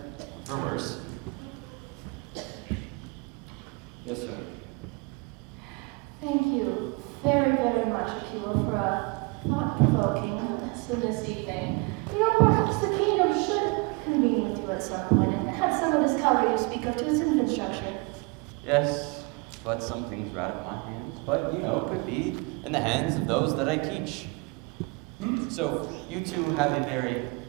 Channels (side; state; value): left; quieter; 28.5 dB